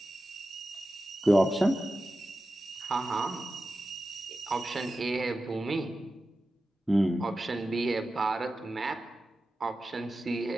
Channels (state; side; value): normal; both; correlation 0.93